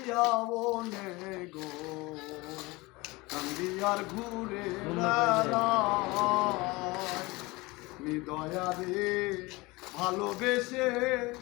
মনে গো কান্দি আর ঘুরে বেড়াই। হৃদয়ারে ভালোবেসে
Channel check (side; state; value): right; quieter; 22.9 dB